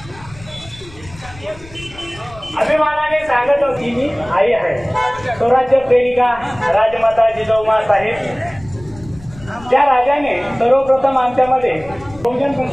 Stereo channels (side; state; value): left; noise; rumble, 20 dB below the sound